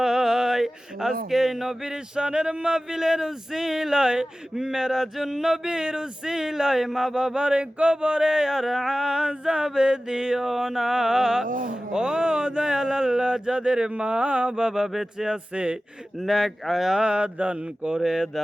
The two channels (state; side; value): normal; both; correlation 0.96